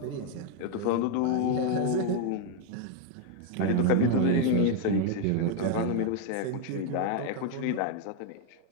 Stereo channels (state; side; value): different; both; correlation 0.01